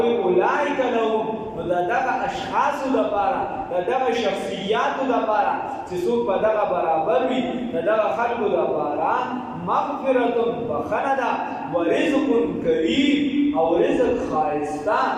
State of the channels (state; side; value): identical; both; correlation 1.00